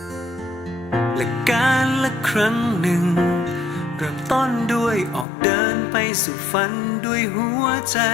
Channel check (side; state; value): right; drops out; at 5.2 s